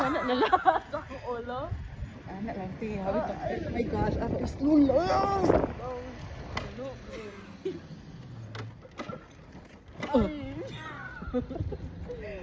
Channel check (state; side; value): identical; both; correlation 1.00